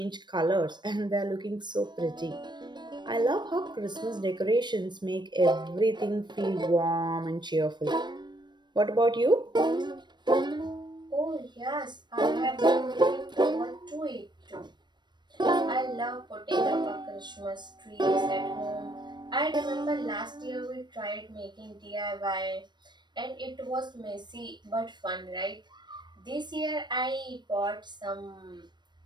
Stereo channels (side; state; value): left; late; 0.22 ms